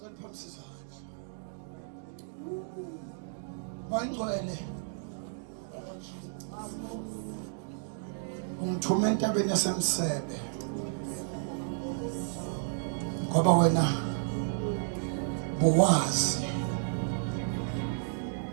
Wangcwele ungithume entabeni yasemsebe ngoba wena buwazi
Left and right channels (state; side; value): silent; left; digital silence